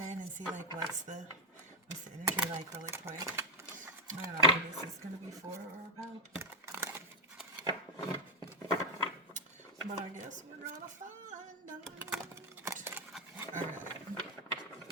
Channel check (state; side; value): normal; both; correlation 0.03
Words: and see like what's the energy like really quick. I don't know who this is gonna be for or about, but I guess we're gonna find out. All right,